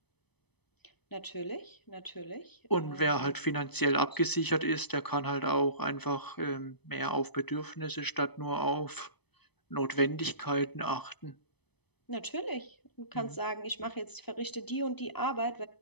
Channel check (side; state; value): right; late; 0.98 ms